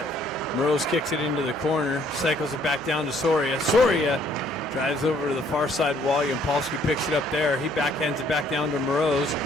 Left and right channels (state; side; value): normal; both; correlation 0.63